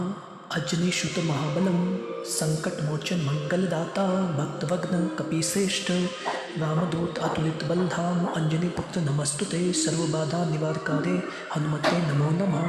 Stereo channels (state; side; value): identical; both; correlation 1.00